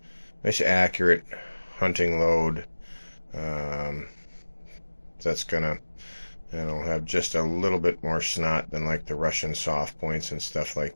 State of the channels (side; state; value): both; inverted; correlation -1.00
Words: accurate hunting load. That's gonna have just a little bit more snot than like the Russian soft points and stuff